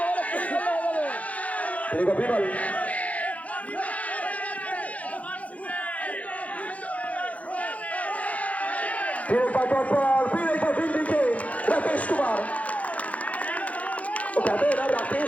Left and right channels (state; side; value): late; right; 0.068 ms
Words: देखो विमल, फिर एक बार दिल्ली के राकेश कुमार। वो कहते हैं ना,